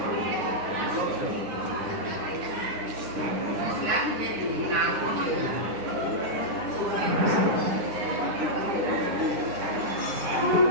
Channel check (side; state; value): left; late; 10 ms